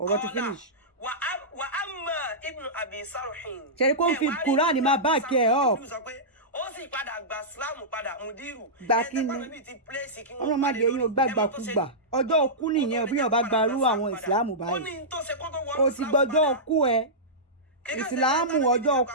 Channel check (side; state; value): both; normal; correlation -0.15